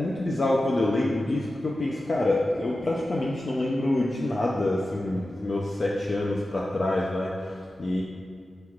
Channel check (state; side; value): normal; both; correlation 0.93